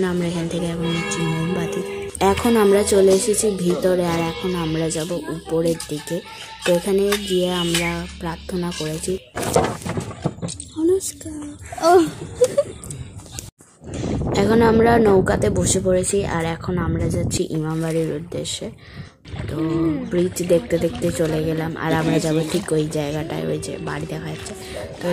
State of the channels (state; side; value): identical; both; correlation 1.00